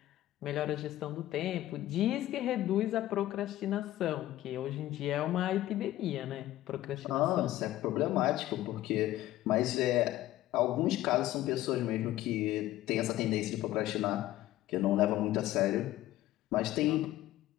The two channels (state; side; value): quieter; right; 14.9 dB